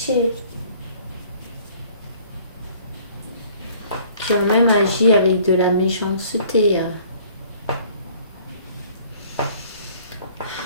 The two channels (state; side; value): inverted; both; correlation -0.55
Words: Qui ont même agi avec de la méchanceté.